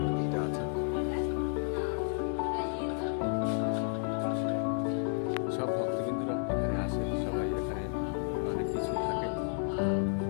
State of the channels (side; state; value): right; silent; 56 dB below the other